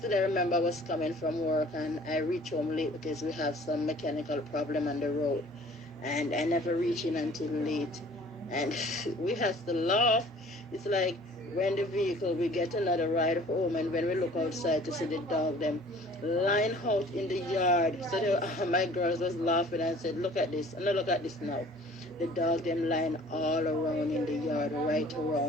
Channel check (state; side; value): normal; both; correlation 0.50